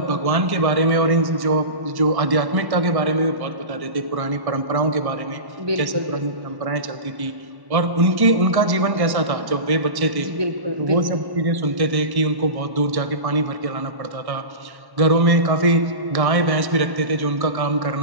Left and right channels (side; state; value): left; late; 1.1 ms